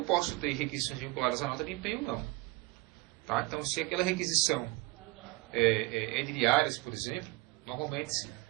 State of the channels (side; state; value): left; quieter; 22.0 dB